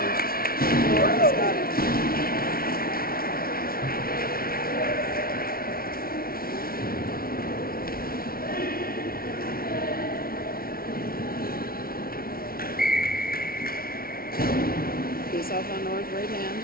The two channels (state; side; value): late; right; 0.43 ms